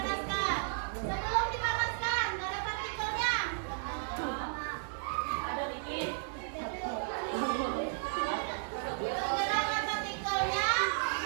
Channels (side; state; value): left; silent; digital silence